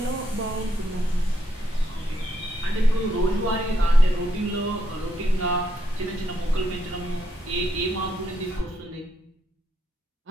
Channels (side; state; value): both; normal; correlation 0.78